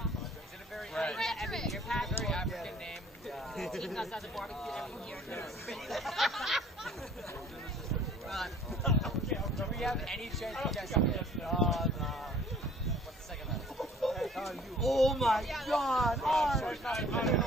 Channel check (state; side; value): normal; both; correlation 0.53